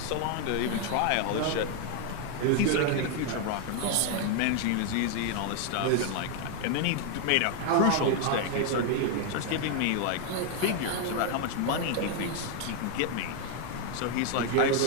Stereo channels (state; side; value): different; both; correlation 0.01